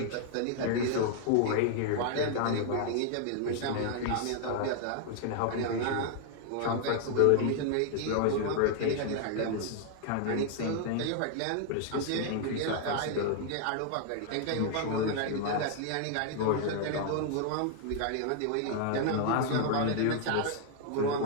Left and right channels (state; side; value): different; both; correlation 0.00